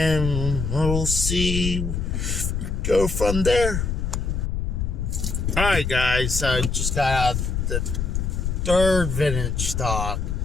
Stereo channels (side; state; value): left; noise; rumble, 1 dB below the sound